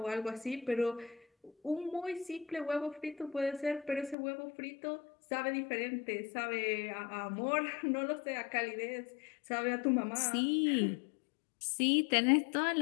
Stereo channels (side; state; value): right; drops out; at 4.2 s